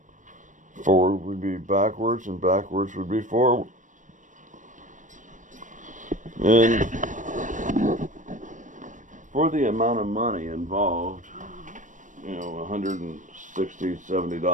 Forward would be backwards, and backwards would be forward. And for the amount of money involved, you know, $160,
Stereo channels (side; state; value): left; late; 0.37 ms